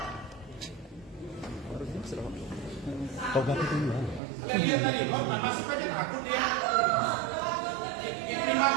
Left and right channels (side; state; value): left; drops out; at 4.2 s